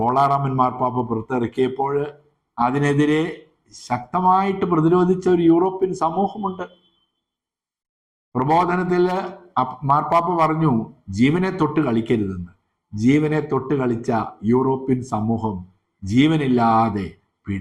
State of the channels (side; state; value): both; identical; correlation 1.00